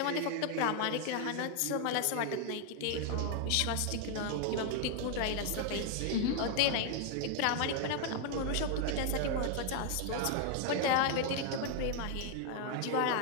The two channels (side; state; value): both; different; correlation 0.00